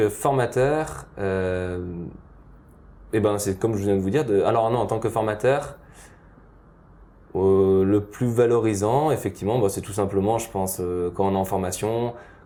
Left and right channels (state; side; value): identical; both; correlation 1.00